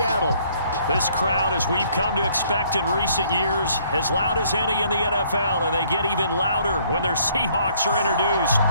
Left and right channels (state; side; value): inverted; both; correlation -0.63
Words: This crowd, as we've come to expect in recent years, as loud as any in the NFL, and they get even louder when their Seahawks are introduced.